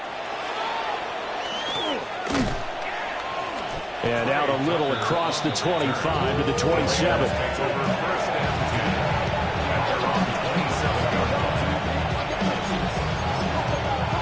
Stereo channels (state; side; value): identical; both; correlation 1.00